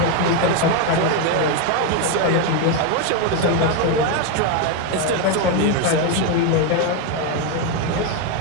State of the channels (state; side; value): different; both; correlation 0.02